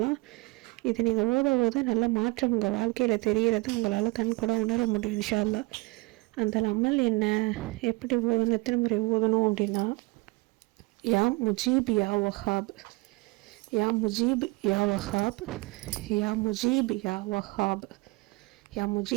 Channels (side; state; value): left; quieter; 25.5 dB